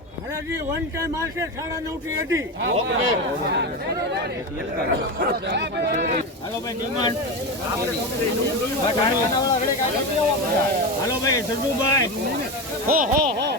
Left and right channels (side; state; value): both; normal; correlation 0.19